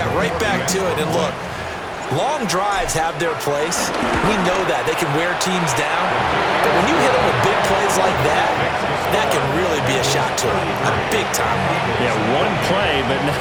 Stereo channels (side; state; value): both; identical; correlation 1.00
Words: right back to it. And look, long drives have their place. We know that. They can wear teams down. But when you hit them with big plays like that, that can really be a shot to them. A big-time one. Yeah, one play, but